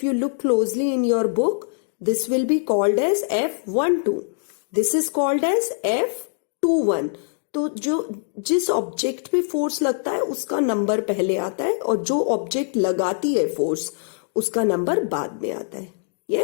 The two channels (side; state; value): right; silent; digital silence